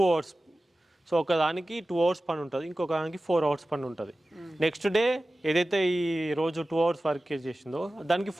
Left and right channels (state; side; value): normal; both; correlation 0.96